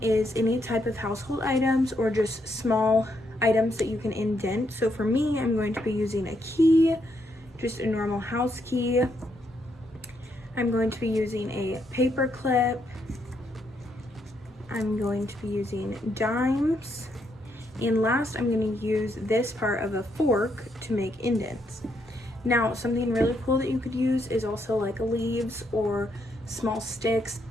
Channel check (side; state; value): both; normal; correlation 0.77